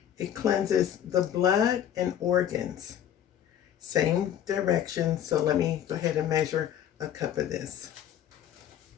It cleanses the blood and organs. Same direction, so let me go ahead and measure a cup of this.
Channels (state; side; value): quieter; right; 10.2 dB